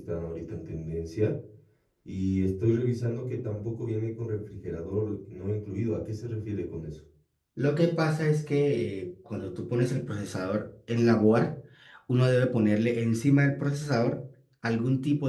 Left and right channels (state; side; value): identical; both; correlation 1.00